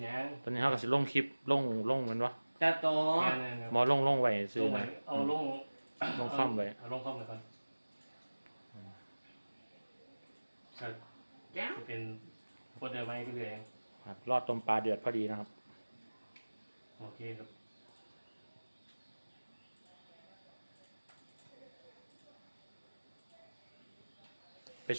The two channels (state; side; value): inverted; both; correlation -1.00